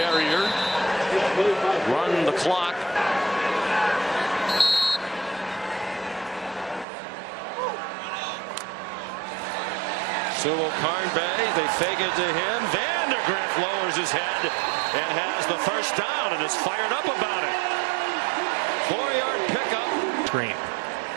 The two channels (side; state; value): left; drops out; at 6.9 s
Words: run the clock. Sumo Karngbe, they fake it to him. Vandegrift lowers his head and has the first down and is fired up about it. 4-yard pickup. Screen.